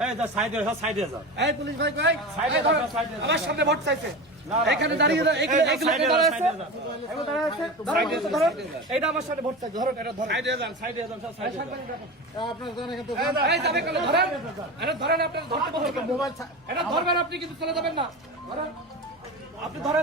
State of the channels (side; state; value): both; normal; correlation 0.27